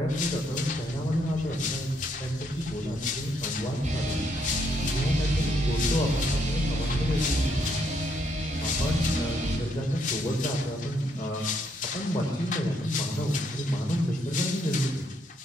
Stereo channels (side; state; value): both; normal; correlation 0.74